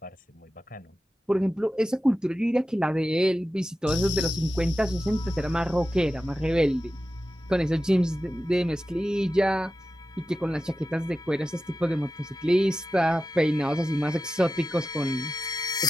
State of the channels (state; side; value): normal; both; correlation 0.93